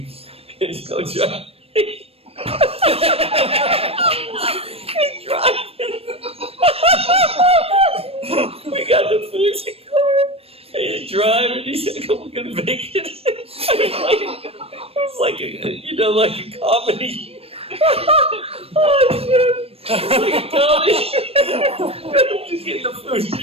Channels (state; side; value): late; left; 0.28 ms